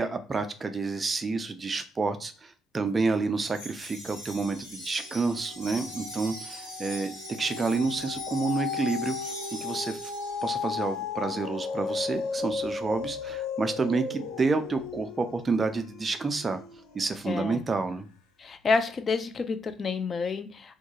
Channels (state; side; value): normal; both; correlation 0.78